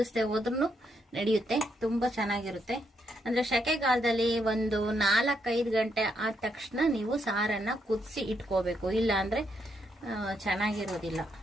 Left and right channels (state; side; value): normal; both; correlation 0.77